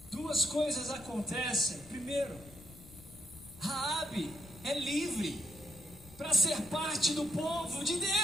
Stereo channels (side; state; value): left; noise; rumble, 20 dB below the sound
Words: duas coisas acontecem. Primeiro, Raabe é livre para ser parte do povo de